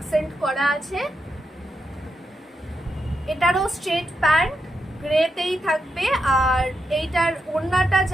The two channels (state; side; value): normal; both; correlation 0.85